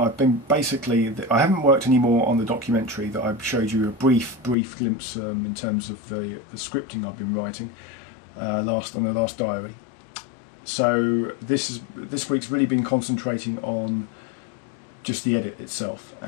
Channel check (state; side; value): drops out; right; at 4.5 s